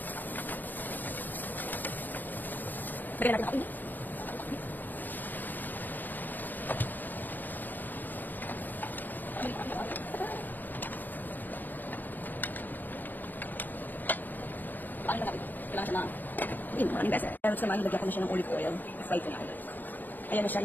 Bigyan natin ako ini. Paano natin? Kailangan siya na maraming beses. Pero naman, nilagyan ko na siya ng olive oil. Fry ko na ulit. Ayan na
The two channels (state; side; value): late; right; 0.087 ms